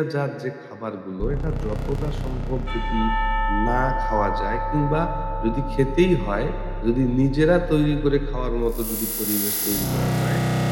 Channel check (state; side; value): identical; both; correlation 1.00